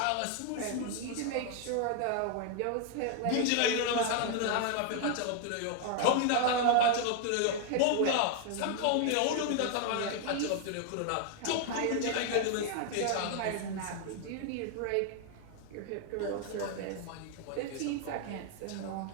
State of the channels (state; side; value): different; both; correlation 0.00